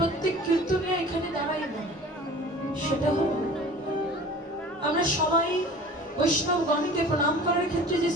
কীর্তনে এখানে দাঁড়াই না, সেটা হল আমরা সবাই বৈষ্ণব গণকে প্রণাম করার ক্ষেত্রে যে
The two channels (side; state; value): both; normal; correlation 0.42